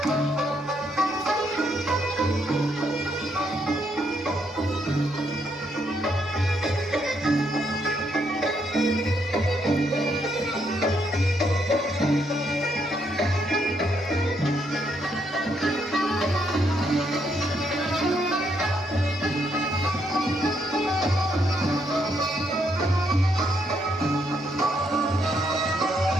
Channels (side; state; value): both; normal; correlation 0.75